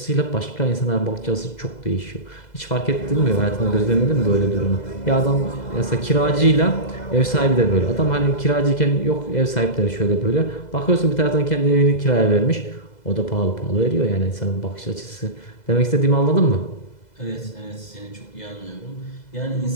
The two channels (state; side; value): late; right; 2.0 ms